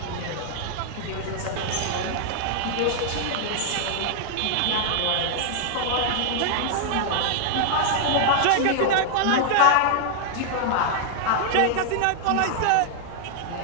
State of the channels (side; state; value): both; different; correlation -0.01